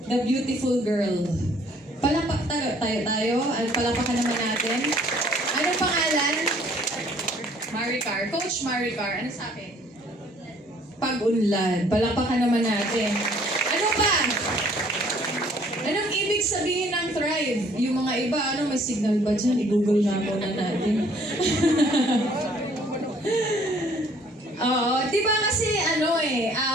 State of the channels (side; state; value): both; normal; correlation 0.59